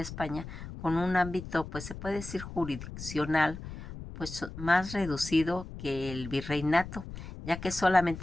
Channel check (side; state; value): left; noise; rumble, 11 dB below the sound